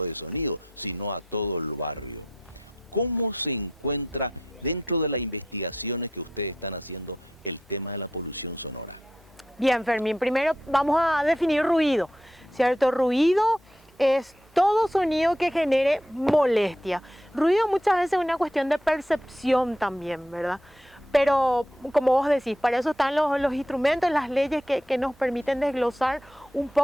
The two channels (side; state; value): both; normal; correlation 0.80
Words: de sonido, sino a todo el barrio. ¿Cómo se encuentra dentro de las investigaciones que ustedes están haciendo el tema de la polución sonora? Bien, Fermín, primero vamos a definir ruido, ¿cierto? Ruido es todo sonido que genere molestia. Ruido muchas veces es una cuestión de percepción también, ¿verdad? Pero como vos decís, para eso están los instrumentos, las leyes que nos permiten desglosar un